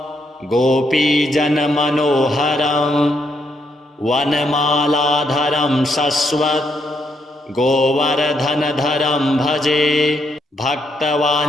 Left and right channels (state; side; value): normal; both; correlation 0.76